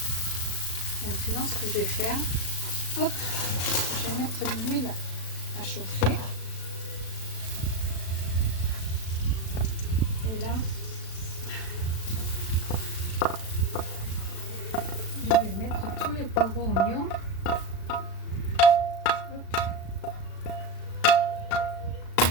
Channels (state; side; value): late; right; 36 ms